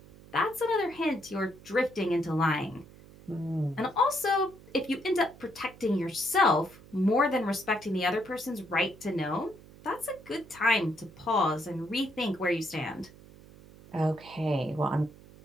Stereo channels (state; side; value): noise; right; hum, 21 dB below the sound